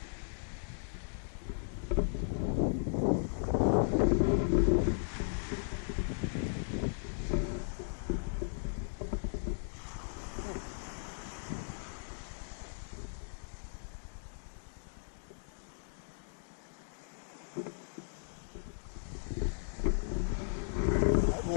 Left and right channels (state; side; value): silent; right; digital silence